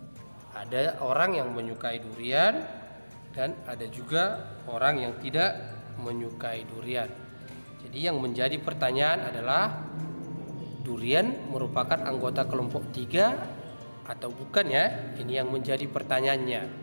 ada orang yang menyukai durian dan ada juga orang yang tidak menyukai durian. Jadi yang menjadi pertanyaan adalah, durian merupakan anggota kelompok 3 atau bukan, ya? Ini yang menjadi pertanyaannya.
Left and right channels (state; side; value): inverted; both; correlation -1.00